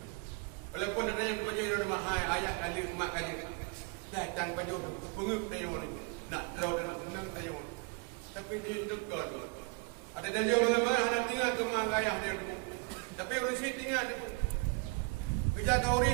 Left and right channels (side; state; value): left; quieter; 29.6 dB